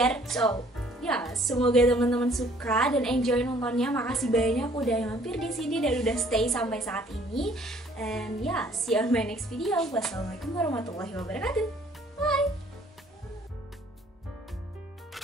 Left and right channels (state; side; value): normal; both; correlation 0.59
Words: So ya, semoga teman-teman suka dan enjoy nontonnya. Makasih banyak udah mampir di sini dan udah stay sampai saat ini. And yeah, see you on my next video. Wassalamualaikum warahmatullahi wabarakatuh. Bye.